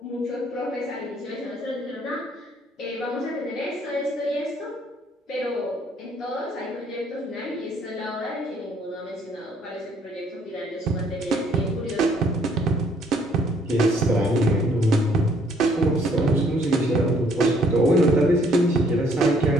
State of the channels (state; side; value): normal; both; correlation 0.63